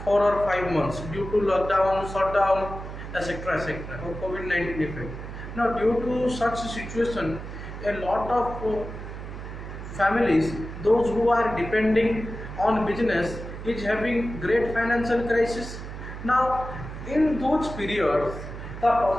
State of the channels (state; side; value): noise; right; hum, 10 dB below the sound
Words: 4 or 5 months due to lockdown, shutdown, etc., or COVID-19 effect. Now, due to such a situation, a lot of families, those who are depending on business, is having great financial crisis. Now, in those periods, the